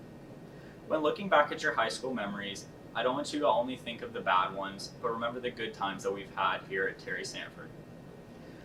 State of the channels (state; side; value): identical; both; correlation 1.00